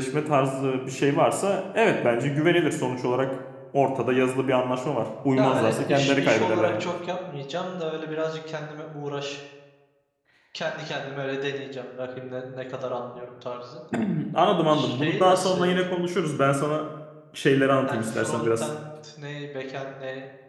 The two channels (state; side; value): identical; both; correlation 1.00